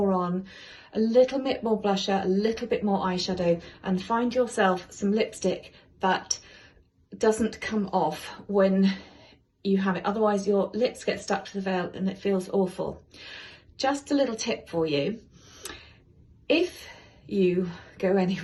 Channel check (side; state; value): both; identical; correlation 1.00